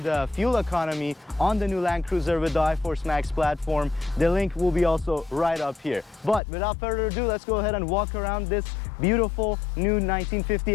fuel economy on the new Land Cruiser with the iForce Max platform. The link will be also right up here. But without further ado, let's go ahead and walk around this beautiful new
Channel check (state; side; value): drops out; right; at 6.4 s